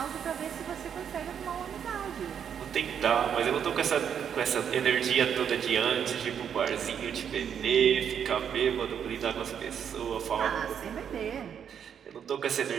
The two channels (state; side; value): quieter; left; 8.2 dB